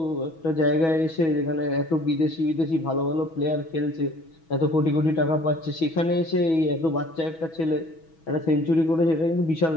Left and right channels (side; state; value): right; late; 6.2 ms